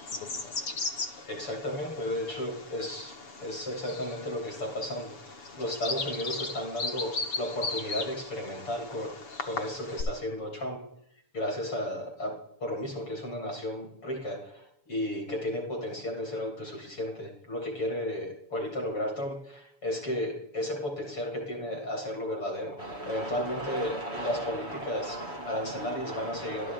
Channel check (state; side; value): late; right; 7.0 ms